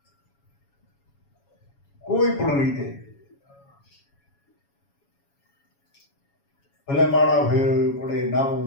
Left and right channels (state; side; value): late; right; 7.2 ms